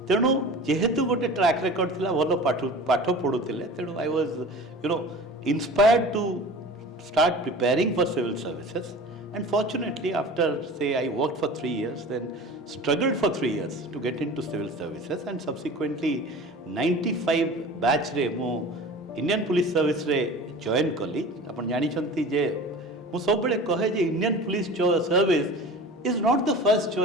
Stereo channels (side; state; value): both; normal; correlation 0.38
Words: तेणु जेहेतु गोटे track record थिला भलो पाठ पढ़ुले तेणु I was inspired to start preparing for civil services and fortunately after say I worked for 3 years then struggled for 3 years to get into civil services and subsequently 95 batch रे मो Indian police service रे join कली अपन जानी जे ମୁଁ ସବୁବେଳେ କହେ ଯେ Indian police service is not the first